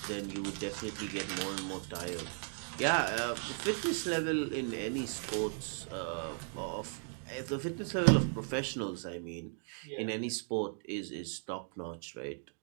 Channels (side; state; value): left; silent; 53 dB below the other